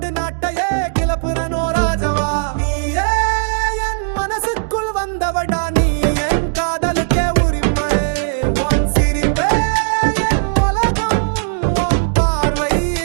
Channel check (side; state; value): left; silent; digital silence